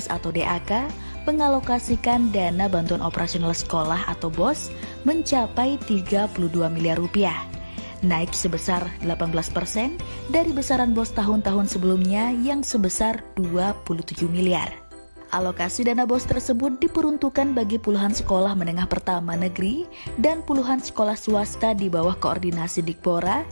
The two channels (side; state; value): both; inverted; correlation -1.00